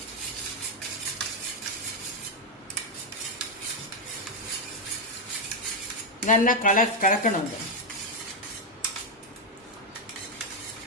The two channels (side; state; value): both; normal; correlation 0.02